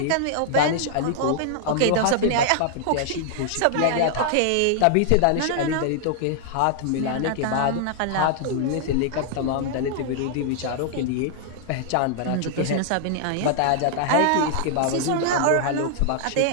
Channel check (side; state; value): both; different; correlation 0.00